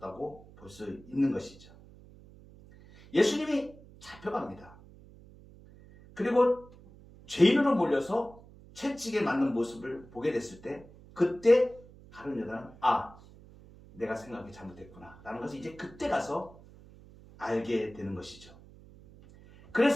볼 수 있는 것이죠. 예수님이 잡혀갑니다. 그리고 죄인으로 몰려서 채찍에 맞는 모습을 보게 됐을 때, 그때 가룟 유다는 내가 생각이 잘못됐구나 라는 것을 이제 그때 가서 알게 되는 것이죠.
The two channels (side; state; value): right; noise; hum, 21 dB below the sound